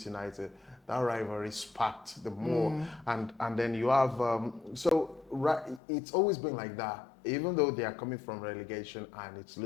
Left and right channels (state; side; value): drops out; right; at 5.8 s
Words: United. That rivalry sparked the more, and then you have it's always been like that. Even though they are coming from relegation, and it